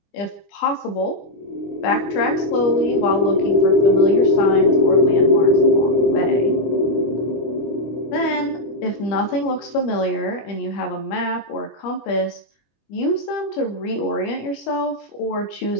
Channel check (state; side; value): late; right; 25 ms